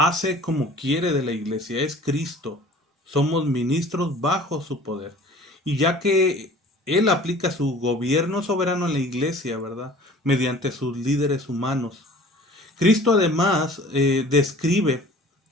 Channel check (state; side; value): normal; both; correlation 0.46